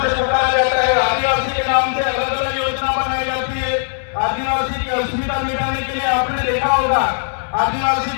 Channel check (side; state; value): right; silent; digital silence